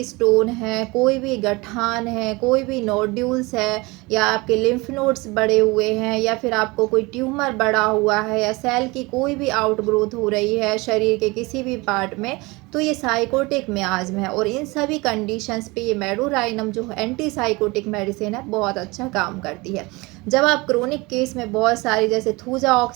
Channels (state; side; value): quieter; left; 24.2 dB